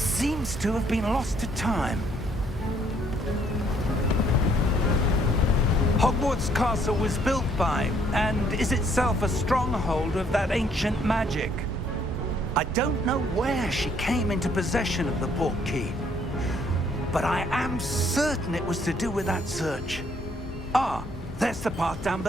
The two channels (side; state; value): both; normal; correlation 0.66